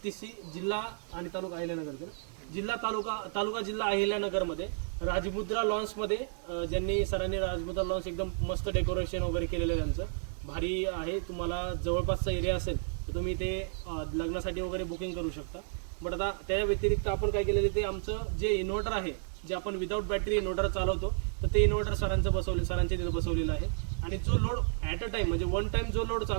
जिल्हा आणि तालुका अहिल्यानगर, जिल्हा अहिल्यानगरमध्ये राजमुद्रा लॉन्समध्ये ज्यांनी सरांनी राजमुद्रा लॉन्स एकदम मस्त डेकोरेशन वगैरे केलेलं आहे, त्यांचं भारी आहे। तुम्हाला जवळपासचा एरिया असेल तर तुम्ही ते लग्नासाठी वगैरे बुकिंग करू शकता। बट आता त्या व्यतिरिक्त आपण काय केलेलं ते आमचं जे इन्व्हर्टर आहे, जे आपण विदाउट बॅटरी इन्व्हर्टर चालवतो, तर ते इन्व्हर्टर सरांच्या तिथे बसवलेलं आहे। आणि जो लोड ॲट अ टाइम म्हणजे वन टाइम जो लोड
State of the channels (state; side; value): silent; left; digital silence